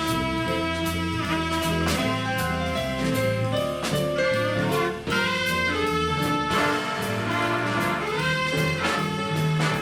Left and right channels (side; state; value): both; identical; correlation 1.00